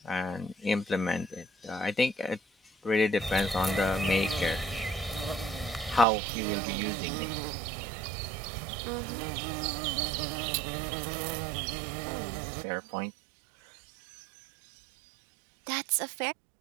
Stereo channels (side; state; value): left; drops out; at 6.1 s